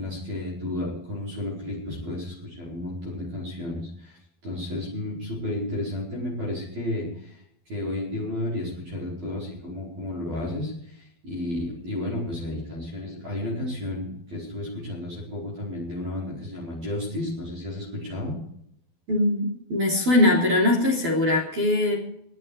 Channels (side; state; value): left; late; 12 ms